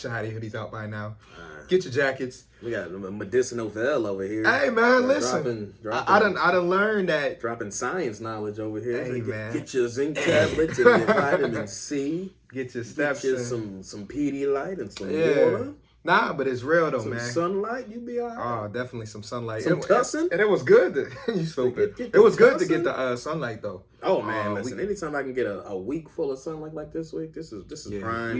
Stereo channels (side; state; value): both; identical; correlation 1.00